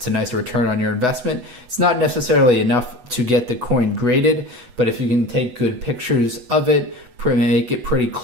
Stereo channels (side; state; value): left; late; 8.1 ms